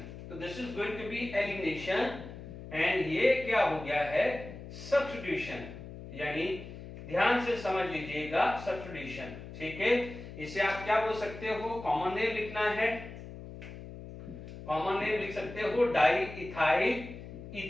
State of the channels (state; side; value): noise; left; hum, 12 dB below the sound